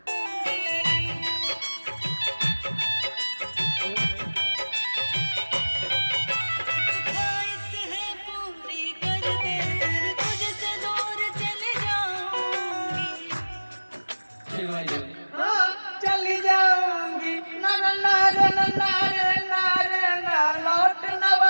चली जाऊंगी ना ना ना रे ना ना रे ना रे ना लौट ना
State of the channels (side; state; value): both; inverted; correlation -1.00